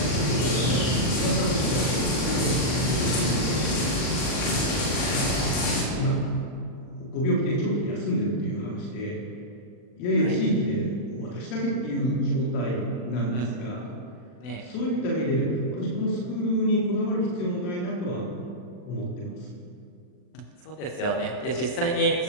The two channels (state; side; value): late; right; 40 ms